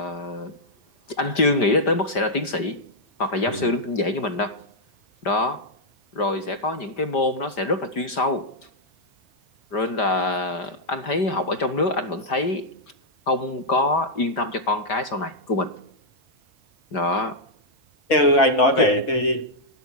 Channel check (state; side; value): late; right; 5.1 ms